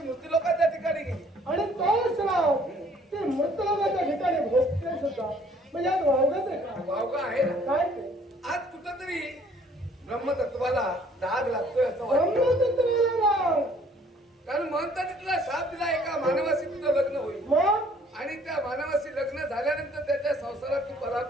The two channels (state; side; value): normal; both; correlation 0.59